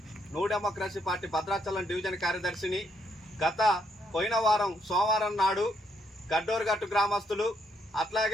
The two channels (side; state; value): both; normal; correlation 0.74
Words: new democracy party Bhadrachalam division కార్యదర్శిని. పోయిన వారం సోమవారం నాడు గడ్డోరుగట్టు గ్రామస్తులు